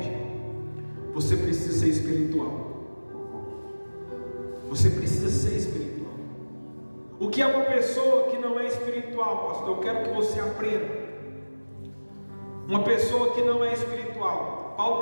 Você precisa ser espiritual. Você precisa ser espiritual. O que é uma pessoa que não é espiritual, pastor? Eu quero que você aprenda. Uma pessoa que não é espiritual, Paulo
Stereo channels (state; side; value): inverted; both; correlation -1.00